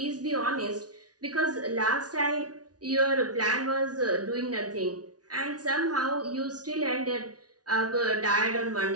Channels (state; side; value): late; left; 0.69 ms